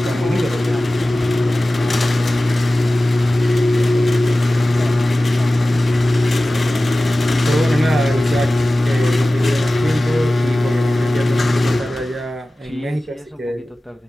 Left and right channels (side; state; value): both; normal; correlation 0.96